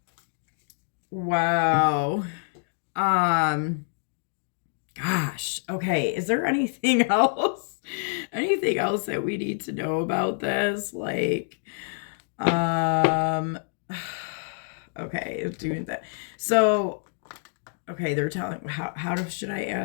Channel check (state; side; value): silent; right; 60 dB below the other